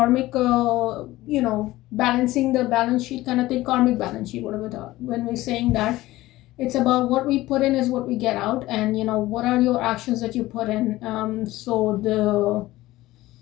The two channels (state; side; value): quieter; right; 17.3 dB